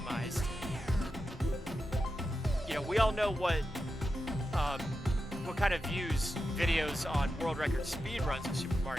We all know what kind of views videos on world record speedruns of Super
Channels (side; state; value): both; normal; correlation 0.89